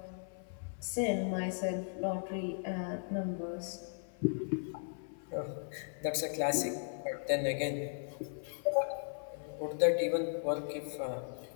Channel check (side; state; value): right; silent; 53 dB below the other